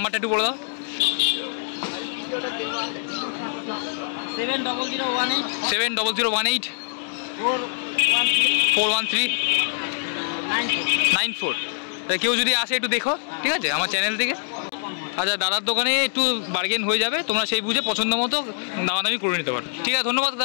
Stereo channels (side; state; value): right; silent; digital silence